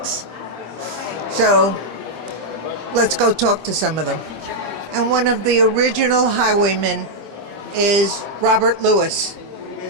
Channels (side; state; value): left; late; 25 ms